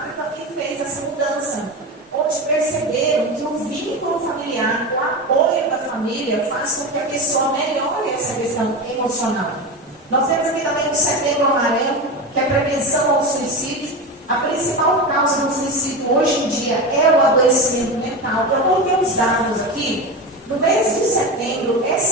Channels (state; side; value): normal; both; correlation 0.22